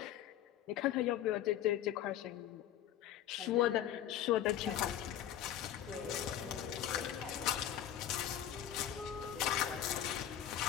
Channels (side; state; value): right; quieter; 11.2 dB